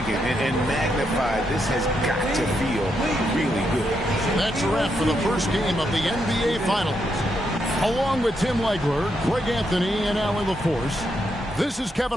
and magnified. This has got to feel really good. That's a wrap for the first game of the NBA Finals. Along with Tim Legler, Greg Anthony, and Allie LaForce, this is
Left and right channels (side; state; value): both; normal; correlation 0.80